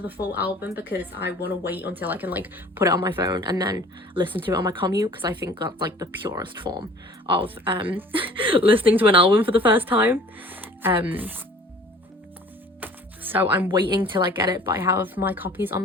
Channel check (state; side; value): normal; both; correlation 0.48